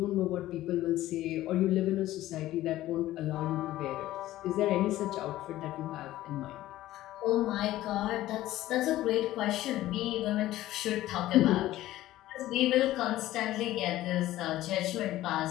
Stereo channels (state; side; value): quieter; right; 15.1 dB